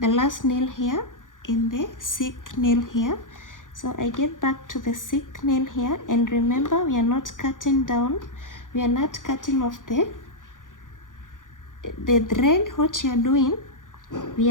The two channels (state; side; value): late; right; 0.88 ms